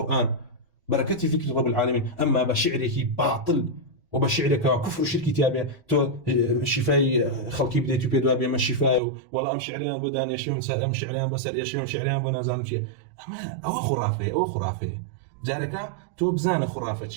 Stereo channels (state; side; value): drops out; left; at 9.0 s